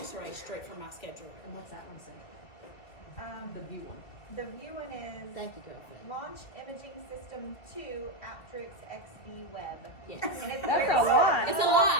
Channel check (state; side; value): late; right; 2.2 ms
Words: straight from my scheduler. And what's that one say? The view one. The view one is Thank you, girlfriend. Launch Imaging System 2 Aptrix XV Web. Yes. And it's the very bottom. It's a